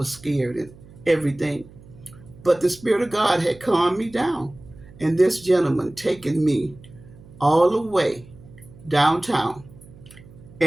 scared and everything. But the Spirit of God had calmed me down, and this gentleman taken me all the way downtown,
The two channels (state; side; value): noise; right; hum, 22 dB below the sound